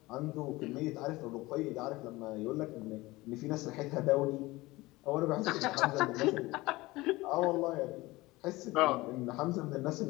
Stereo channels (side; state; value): right; quieter; 20.3 dB